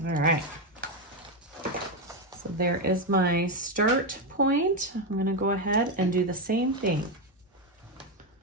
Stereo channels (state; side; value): normal; both; correlation 0.08